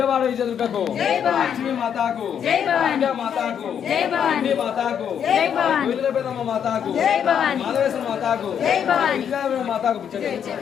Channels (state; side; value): quieter; right; 8.4 dB